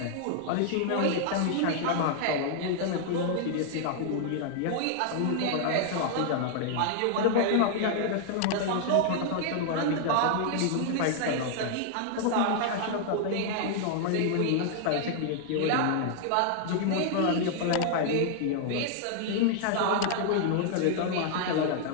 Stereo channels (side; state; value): both; different; correlation 0.00